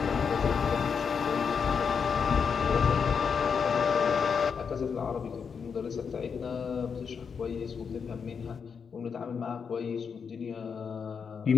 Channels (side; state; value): right; quieter; 6.3 dB